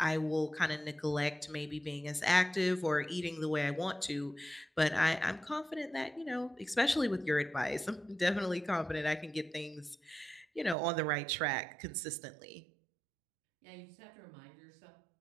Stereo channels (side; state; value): left; drops out; at 10.8 s